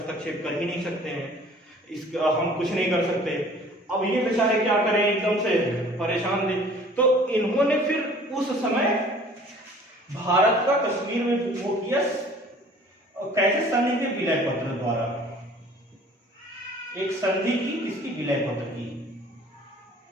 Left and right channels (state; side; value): normal; both; correlation 0.50